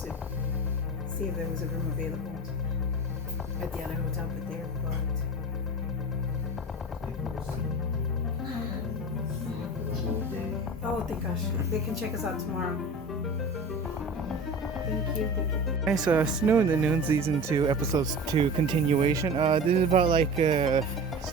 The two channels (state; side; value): normal; both; correlation 0.33